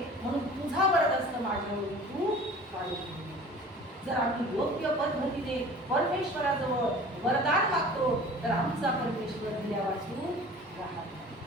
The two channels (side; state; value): both; normal; correlation 0.43